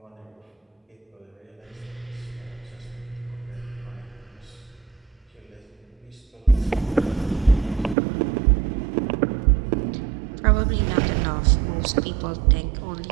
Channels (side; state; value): left; drops out; at 8.0 s